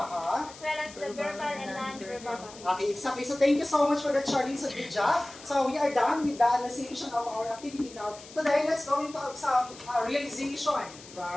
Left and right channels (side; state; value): left; noise; hiss, 18 dB below the sound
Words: well as the verbal and non-verbal. Okay, exactly. So thank you so much for that, Charlie. So good job. So we are done with the analyzation of our activity now. Today, let's go into some realization,